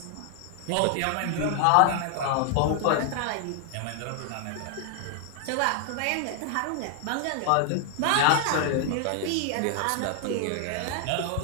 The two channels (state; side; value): different; both; correlation 0.00